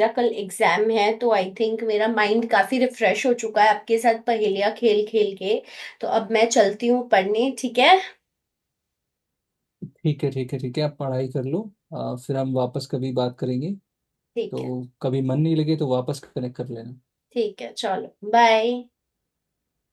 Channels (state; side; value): identical; both; correlation 1.00